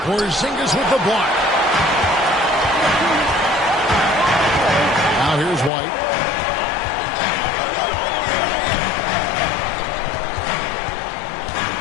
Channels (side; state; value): right; drops out; at 5.7 s